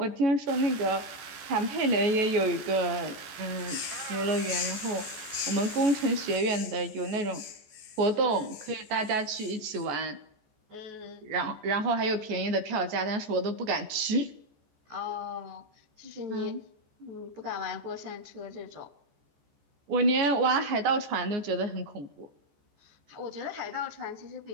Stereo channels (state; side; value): late; left; 14 ms